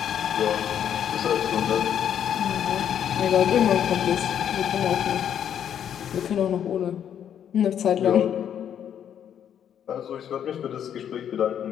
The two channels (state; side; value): quieter; right; 9.3 dB